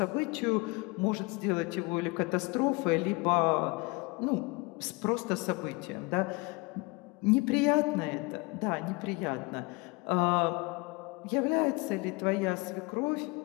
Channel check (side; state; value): right; quieter; 26.5 dB